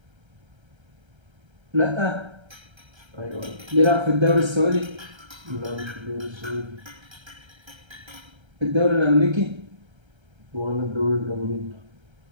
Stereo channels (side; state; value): left; late; 1.3 ms